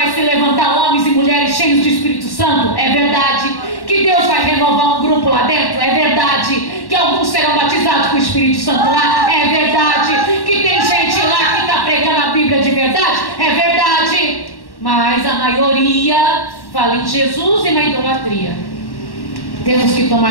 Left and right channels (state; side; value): late; right; 1.1 ms